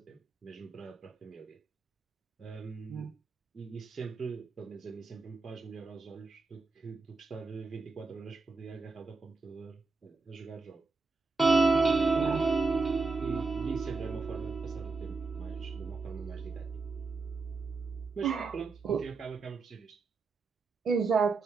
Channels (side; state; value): left; quieter; 4.1 dB